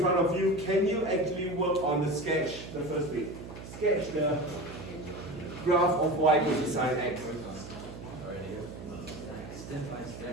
of you. Can you actually work on the sketch, the first bit? Sketch the graph of y equals to sine x. Step by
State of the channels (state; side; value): noise; right; hum, 12 dB below the sound